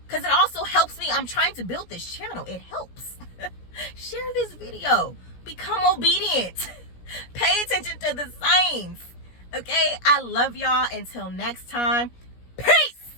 Because it also helps me. I'm trying to build this channel. It helps. Share this video. Become obedient. Pay attention to the signs. Okay? I love y'all. Until next time.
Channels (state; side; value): late; right; 17 ms